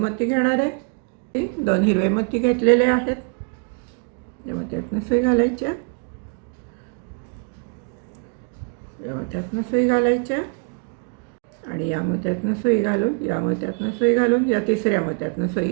घेणार आहे. 2 हिरवे मोती घेतलेले आहेत. या मोत्यातनं सुई घालायची, या मोत्यातनं सुई घालायची आणि या मोत्यातनं सुई घालून या मोत्यातनं सुई घालून या तिसऱ्या मोत्यातनं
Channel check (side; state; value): left; quieter; 36.5 dB